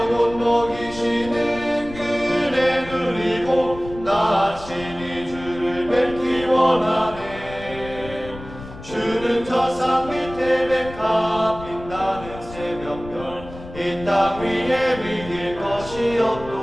먹이시는 그네 누리고 나 친히 주를 뵙기 원하네. 주는 저 산 밑에 메카 빛나는 새벽별 이 땅 위에 비길 것이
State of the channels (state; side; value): noise; left; rumble, 15 dB below the sound